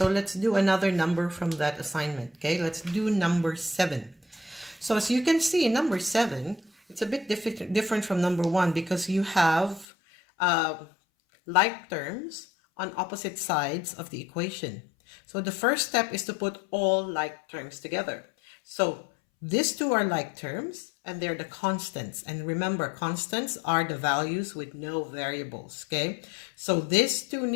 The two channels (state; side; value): drops out; right; at 9.9 s